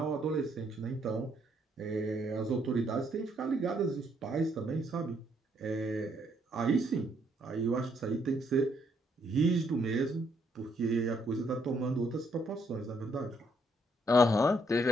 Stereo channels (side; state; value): both; normal; correlation 0.71